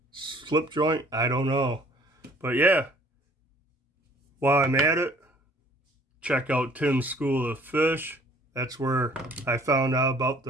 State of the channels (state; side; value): normal; both; correlation 0.56